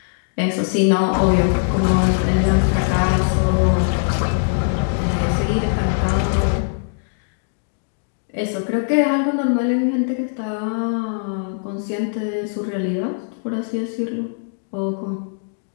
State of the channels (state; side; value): silent; right; digital silence